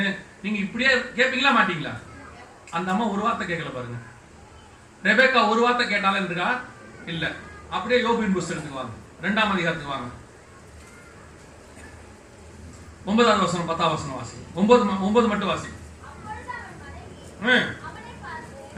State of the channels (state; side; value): identical; both; correlation 1.00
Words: நீங்க இப்படியே கேட்பீங்களா மாட்டீங்களா? அந்த அம்மா ஒரு வார்த்தை கேட்கல பாருங்க. ரெபேக்கா ஒரு வார்த்தை கேட்டாலும் இருக்கா? இல்ல. அப்படியே யோபின் புஸ்தகத்துக்கு வாங்க, 2ஆம் அதிகாரத்துக்கு வாங்க. 9வது வசனம் 10வது வசனம் வாசி. 9 மட்டும் வாசி.